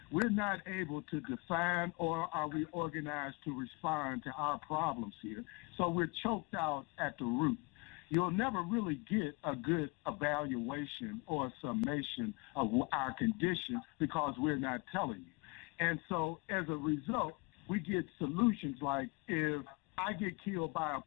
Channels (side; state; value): right; quieter; 28.1 dB